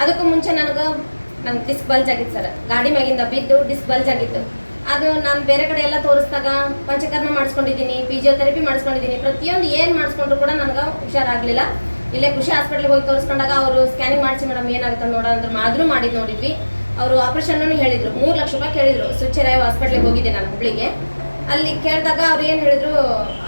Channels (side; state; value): both; inverted; correlation -1.00